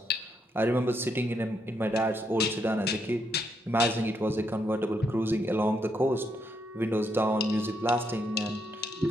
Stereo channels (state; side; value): normal; both; correlation 0.77